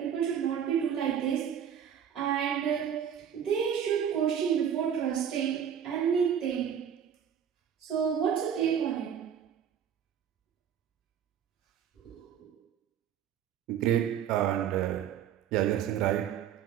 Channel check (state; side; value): quieter; left; 8.8 dB